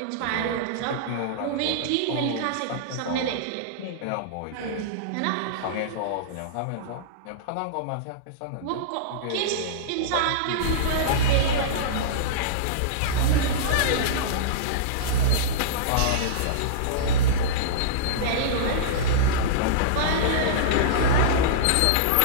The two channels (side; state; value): both; different; correlation -0.03